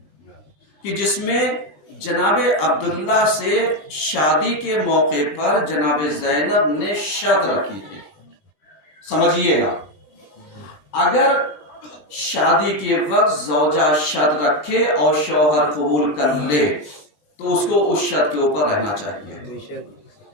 کہ جس میں جناب عبداللہ سے شادی کے موقع پر جناب زینب نے شرط رکھی تھی۔ سمجھیے گا، اگر شادی کے وقت زوجہ شرط رکھے اور شوہر قبول کر لے تو اس کو اس شرط کے اوپر رہنا چاہیے۔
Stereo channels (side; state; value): right; late; 20 ms